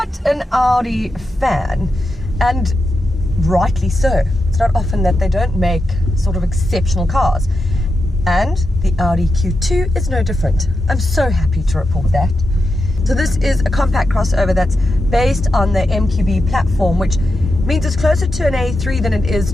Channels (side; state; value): both; normal; correlation 0.88